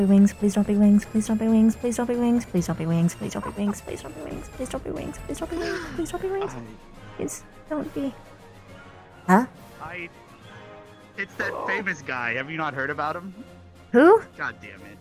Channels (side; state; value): both; identical; correlation 1.00